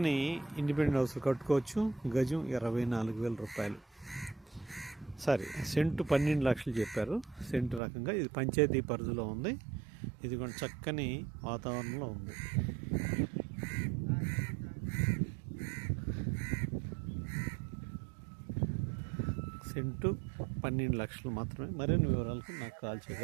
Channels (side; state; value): left; drops out; at 7.8 s